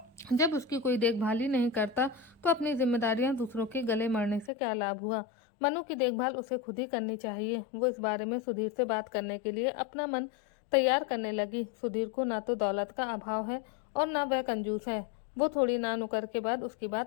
जब उसकी कोई देखभाल ही नहीं करता तो अपनी जिम्मेदारियां दूसरों के गले मरने से क्या लाभ हुआ। मनु की देखभाल उसे खुद ही करनी चाहिए। वो इस बारे में सुधीर से बात करने के लिए अपना मन तैयार करने लगी। सुधीर को ना तो दौलत का अभाव है और ना वह कंजूस है। वो थोड़ी ना नुकर के बाद उसकी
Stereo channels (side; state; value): right; drops out; at 4.5 s